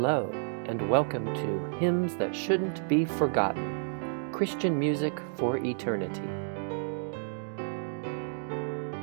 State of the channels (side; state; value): left; silent; digital silence